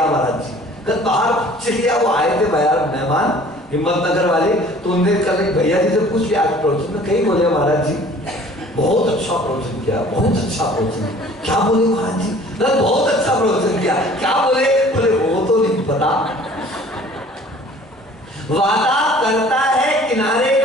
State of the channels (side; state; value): both; normal; correlation 0.50